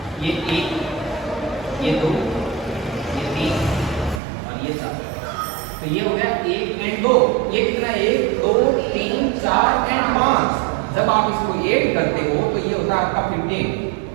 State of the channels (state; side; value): drops out; left; at 4.2 s